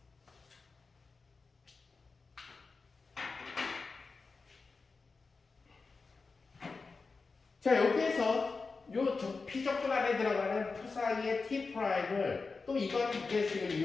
자, 여기에서 요 피적분 안에 들어가는 psi의 t 프라임을 또 이번 계식을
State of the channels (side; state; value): right; quieter; 4.3 dB